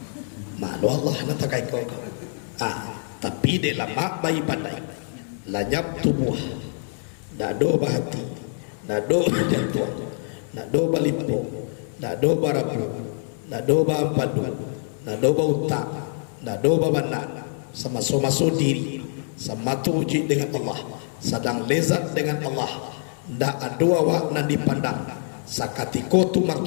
Malu Allah natakai ko. Tapi de lama bayi pandai. Lanyap tubuh. Dado bahati. Dado jantung. Nado balimpo, nado barapu, nado bampadu, nado bauta, nado babana, sama so diri, sama tuji dengan Allah, sedang lezat dengan Allah, ndak adua wak nan dipandang, sakatiko tu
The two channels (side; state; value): right; silent; 62 dB below the other